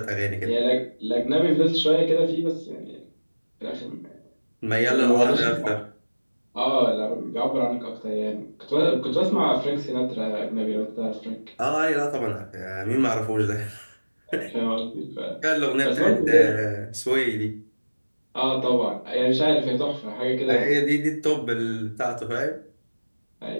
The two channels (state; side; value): inverted; both; correlation -1.00